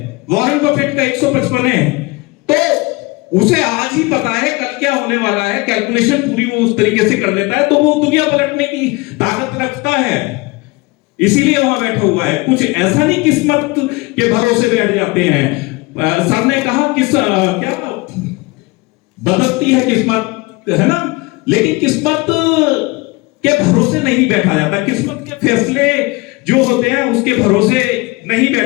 वॉरेन बफेट का 155 है। तो उसे आज ही पता है कल क्या होने वाला है, कैलकुलेशन पूरी वो उस तरीके से कर लेता है, तो वो दुनिया पलटने की ताकत रखता है, इसीलिए वहां बैठा हुआ है। कुछ ऐसा नहीं किस्मत के भरोसे बैठ जाते हैं। सर ने कहा क्या बदलती है किस्मत, है ना, लेकिन किस्मत के भरोसे नहीं बैठा जाता। किस्मत के फैसले जो होते हैं उसके भरोसे नहीं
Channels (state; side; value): quieter; right; 24.3 dB